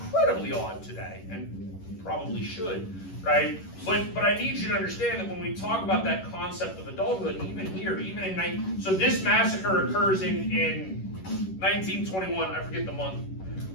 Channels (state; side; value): late; right; 11 ms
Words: odd today, and probably should, right? But I need you to understand that when we talk about that concept of adulthood, even here, even in so this massacre occurs in 1921. I forget the month,